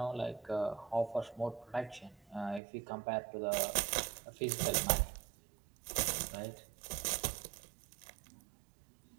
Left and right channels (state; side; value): drops out; left; at 2.6 s